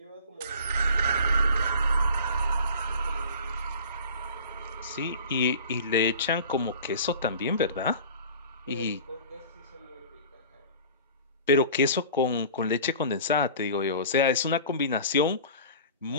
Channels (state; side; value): inverted; both; correlation -0.41